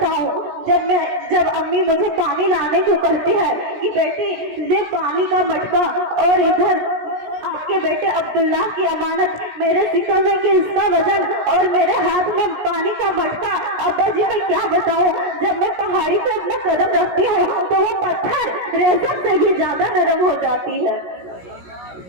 जब अम्मी मुझे पानी लाने को कहती है कि बेटी ले पानी का मटका, और इधर आपके बेटे अब्दुल्ला की अमानत मेरे सिक्का में कि इसका वजन, और मेरे हाथ में पानी का मटका। अब्बा जी मैं क्या बताऊं? जब मैं पहाड़ी पे अपना कदम रखती हूँ तो वो पत्थर रेशम से भी ज्यादा नरम हो जाती है।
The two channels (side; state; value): left; late; 17 ms